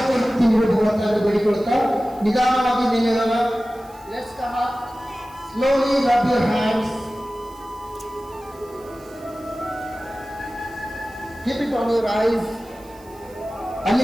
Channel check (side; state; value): right; noise; hiss, 26 dB below the sound